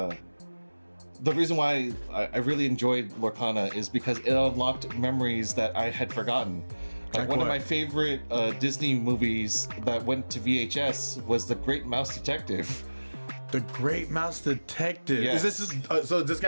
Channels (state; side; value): inverted; both; correlation -1.00